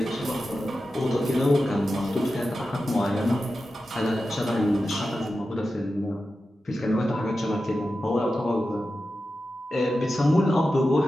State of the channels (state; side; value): normal; both; correlation 0.92